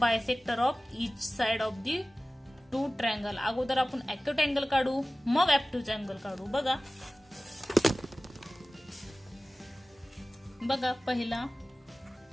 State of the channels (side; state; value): both; normal; correlation 0.97